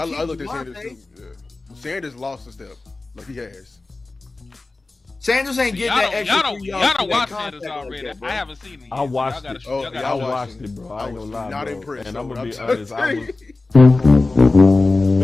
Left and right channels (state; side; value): quieter; right; 3.4 dB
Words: looked at Sanders Javonte. too. Yeah. Sanders lost a step, like he has. Sanders ain't getting that extra Y'all 3 don't yards. for that watch contact Sanders already. like that, bro. I haven't seen it. Yet. I watched it. Y'all gotta I I watch watched it. it, bro. I I ain't was gonna lie, not bro. impressed, And though, I'm gonna be I'm honest. telling I you. was.